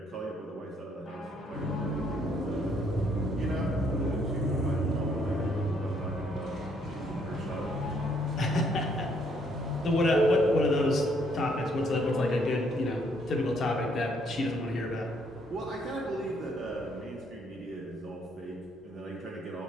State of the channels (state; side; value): normal; both; correlation 0.68